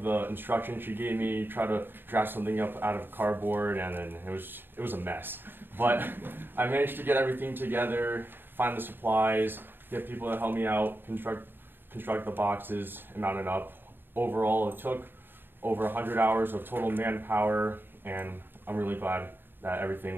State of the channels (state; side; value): late; left; 0.097 ms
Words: the instructions she gave me, try to draft something up out of cardboard, and then it was a mess. But I managed to get everything together, find the supplies, get people to help me out, construct the boxes, and mount it up. Overall, it took over 100 hours of total manpower, and I'm really glad that